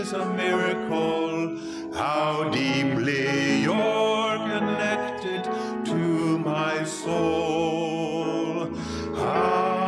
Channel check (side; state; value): both; identical; correlation 1.00